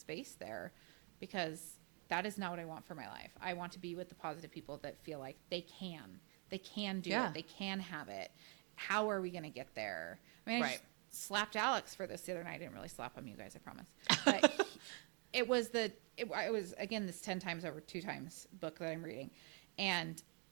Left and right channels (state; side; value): quieter; left; 37.2 dB